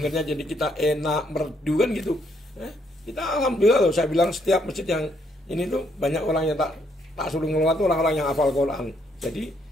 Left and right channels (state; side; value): normal; both; correlation 0.72